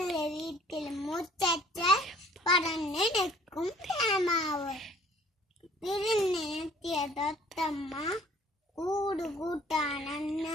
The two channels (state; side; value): normal; both; correlation 0.55